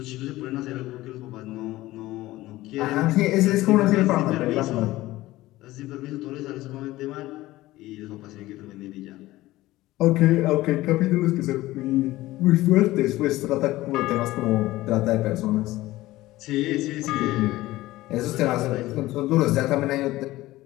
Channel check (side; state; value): right; quieter; 17.4 dB